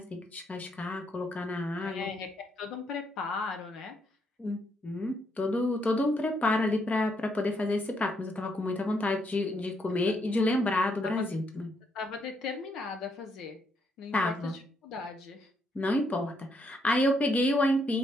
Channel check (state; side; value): normal; both; correlation 0.75